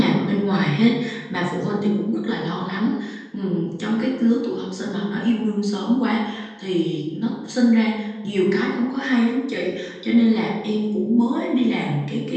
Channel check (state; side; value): identical; both; correlation 1.00